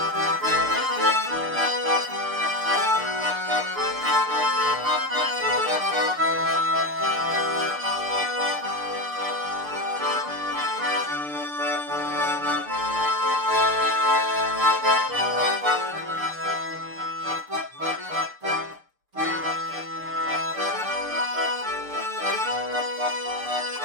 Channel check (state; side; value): late; left; 6.7 ms